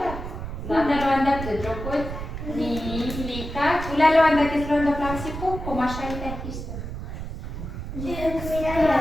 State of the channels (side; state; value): right; noise; rumble, 7 dB below the sound